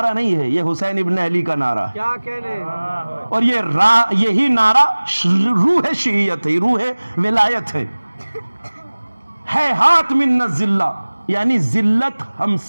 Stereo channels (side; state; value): both; inverted; correlation -1.00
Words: نہیں ہے، یہ حسین ابن علی کا نعرہ ہے، کیا کہنے، اور یہی نعرہ روح شیعیت ہے، روح ولایت ہے ہاتھ من الذلہ، یعنی ذلت ہم